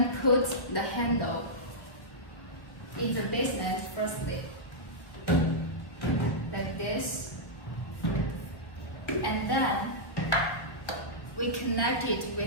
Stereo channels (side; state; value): right; late; 1.1 ms